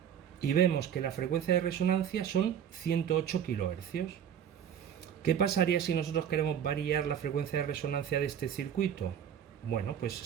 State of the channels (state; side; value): quieter; left; 9.0 dB